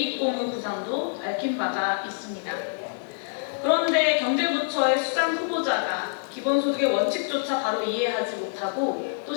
구상도 밝힌 바가 있습니다. 그런데 경제부처의 수장 후보자가 기본소득의 원칙조차 바로 이해하지 못하고 또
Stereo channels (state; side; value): silent; right; digital silence